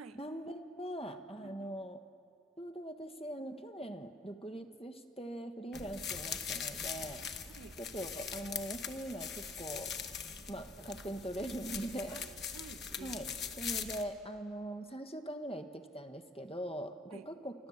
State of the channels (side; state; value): both; normal; correlation 0.60